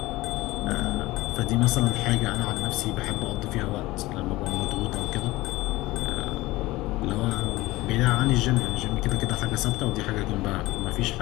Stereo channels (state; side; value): quieter; right; 19.4 dB